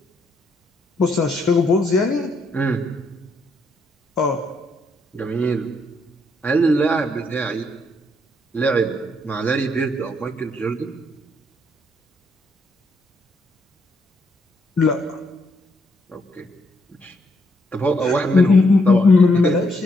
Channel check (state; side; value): normal; both; correlation 0.75